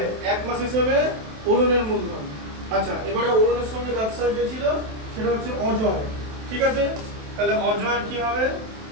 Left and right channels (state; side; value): late; left; 27 ms